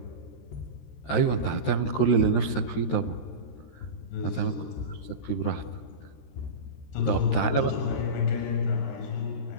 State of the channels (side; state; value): right; late; 13 ms